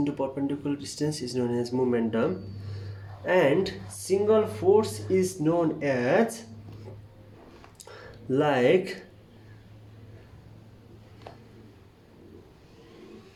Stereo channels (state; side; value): identical; both; correlation 1.00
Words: perpendicular distance is known as momentum, and single force is known as, like,